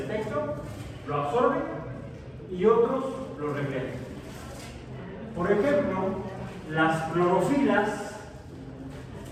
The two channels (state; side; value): identical; both; correlation 1.00